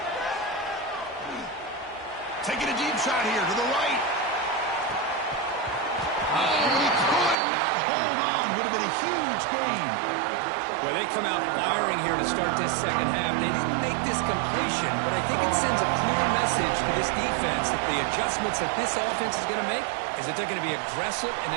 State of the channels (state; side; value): drops out; left; at 7.4 s